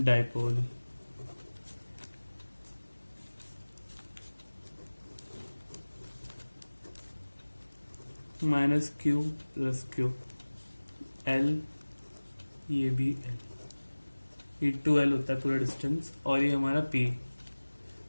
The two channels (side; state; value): both; inverted; correlation -1.00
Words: Minus Q plus Q L, ये भी एल, ये 2L होता है पूरा डिस्टेंस, और ये हमारा P।